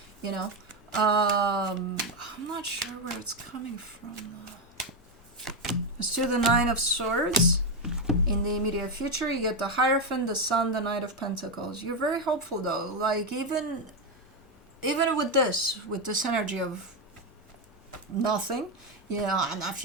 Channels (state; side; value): normal; both; correlation 0.07